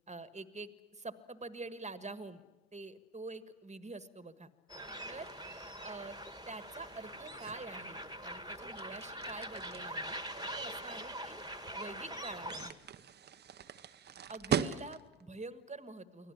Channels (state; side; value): quieter; left; 4.0 dB